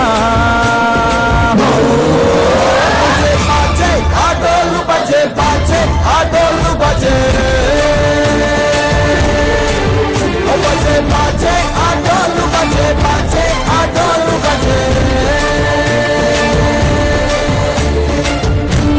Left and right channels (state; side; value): identical; both; correlation 1.00